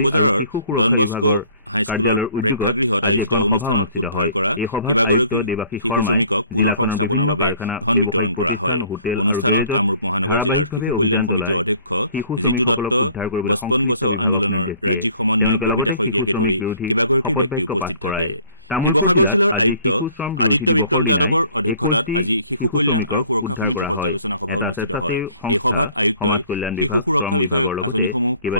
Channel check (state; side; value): inverted; both; correlation -0.56